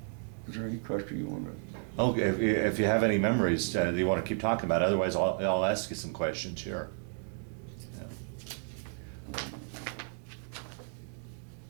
Is there any question you want to? Okay. If you have any memories that you want to keep talking about, otherwise I'll ask you some questions here.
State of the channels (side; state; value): left; silent; 56 dB below the other